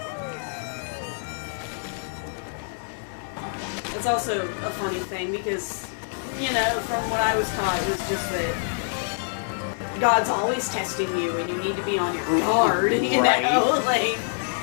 It's also a funny thing because, from what I was taught, it was just that God's always testing you and you need to be on your guard, Right. like...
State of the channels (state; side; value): silent; right; 61 dB below the other